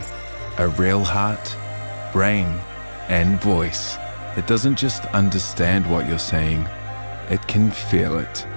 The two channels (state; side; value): inverted; both; correlation -1.00